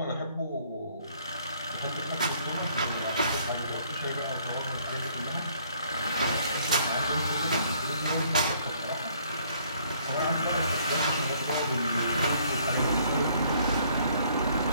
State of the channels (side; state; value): both; inverted; correlation -0.63